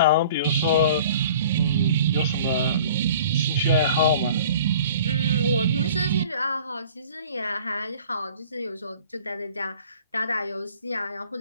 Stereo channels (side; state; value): both; inverted; correlation -0.47